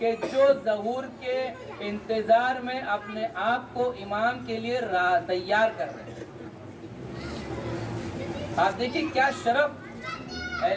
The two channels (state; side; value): identical; both; correlation 1.00